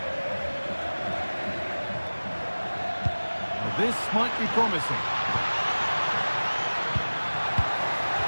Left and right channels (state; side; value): inverted; both; correlation -1.00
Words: Well, this might be promising.